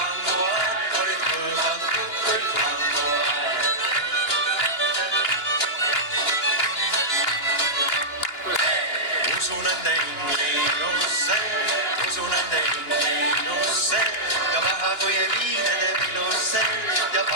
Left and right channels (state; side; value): late; right; 2.9 ms